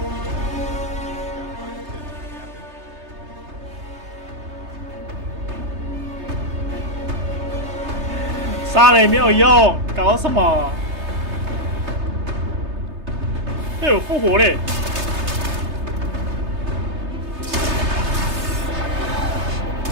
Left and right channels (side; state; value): left; late; 3.3 ms